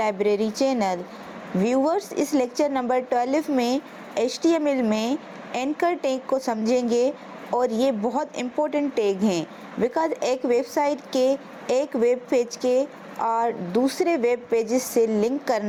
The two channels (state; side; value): identical; both; correlation 1.00